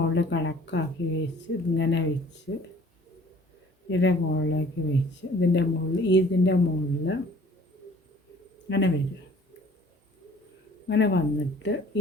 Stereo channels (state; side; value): normal; both; correlation 0.52